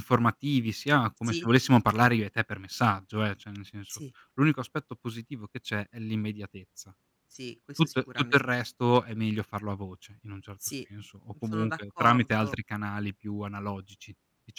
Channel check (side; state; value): both; identical; correlation 1.00